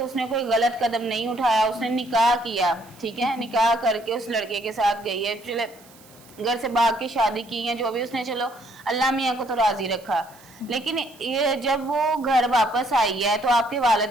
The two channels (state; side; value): noise; right; hiss, 25 dB below the sound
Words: कोई गलत कदम नहीं उठाया, उसने निकाह किया, ठीक है, निकाह करके उस लड़के के साथ गई है, चले घर से भाग के शादी की है, जो भी उसने, चलो अल्लाह मियाँ को तो राजी रखा। लेकिन ये जब वो घर वापस आई है तो आपके वालिद